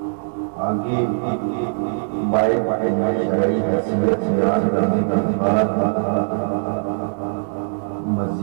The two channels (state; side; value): silent; left; digital silence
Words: آگے بائے شرعی حیثیت بیان کرنے کے بعد